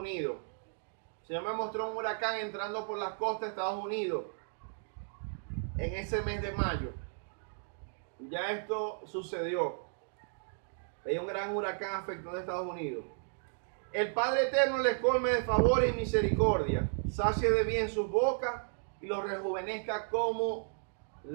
Señor me mostró un huracán entrando por las costas de Estados Unidos en ese mes de mayo. Ya esto sucedió. Hay un gran huracán afectando a Estados Unidos. El Padre Eterno les colme de favores y misericordia, sacie de bien sus bocas y los rejuvenezca como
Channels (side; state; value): left; silent; digital silence